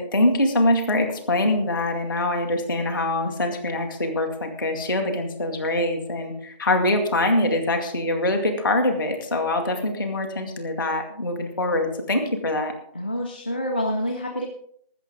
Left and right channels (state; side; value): inverted; both; correlation -0.41